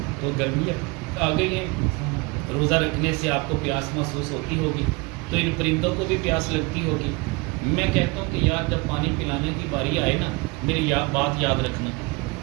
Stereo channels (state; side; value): quieter; left; 26.6 dB